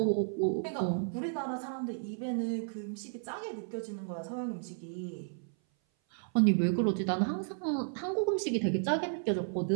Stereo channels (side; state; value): left; silent; 56 dB below the other